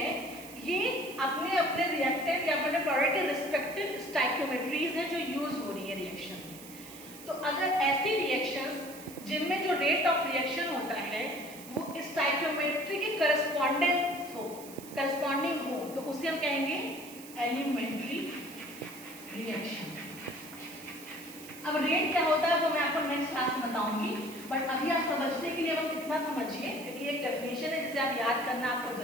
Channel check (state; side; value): noise; right; hiss, 16 dB below the sound